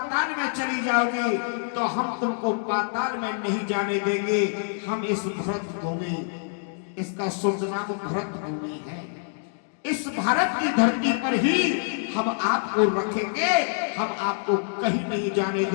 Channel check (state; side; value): silent; right; digital silence